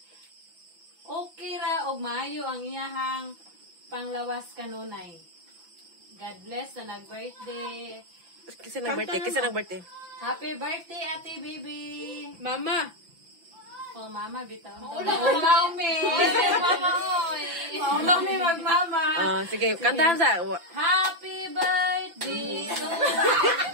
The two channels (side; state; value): left; late; 5.9 ms